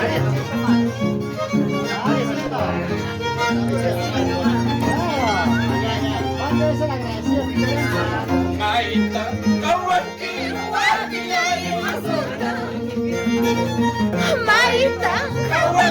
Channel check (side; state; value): both; identical; correlation 1.00